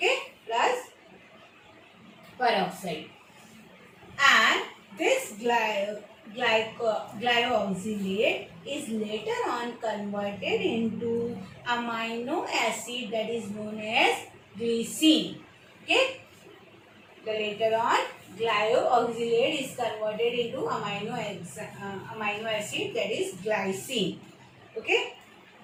plus peroxide. And this glyoxylate is later on converted into amino acid, that is known as glycine. Okay, the later on glyoxylate is converted into amino acid, that is glycine. Okay,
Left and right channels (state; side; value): identical; both; correlation 1.00